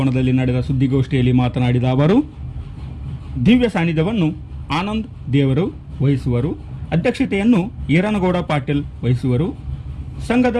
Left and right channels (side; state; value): both; identical; correlation 1.00